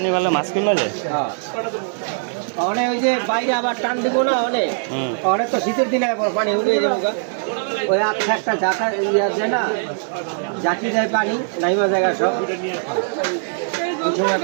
ভালো মাছ কিনবা যায় অনেক ওই যে বাইরে আবার টান দিব না অনেক অনেক তো শীতের দিনে পানি উঠে যাবো ওই একটা জাকা আছে না জাকি যায় পানি নাইমা জায়গা সব ওই সময়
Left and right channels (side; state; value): left; silent; digital silence